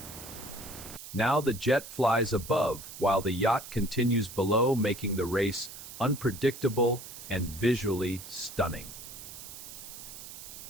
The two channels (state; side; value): noise; right; hiss, 13 dB below the sound